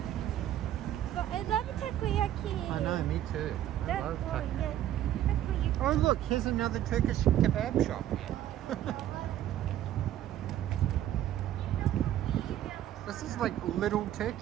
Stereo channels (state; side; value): quieter; left; 12.1 dB